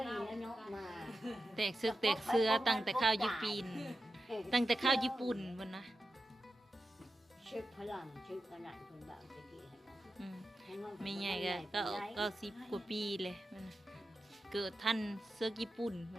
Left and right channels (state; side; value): normal; both; correlation 0.91